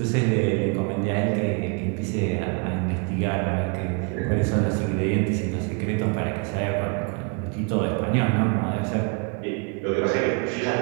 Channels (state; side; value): quieter; left; 33.7 dB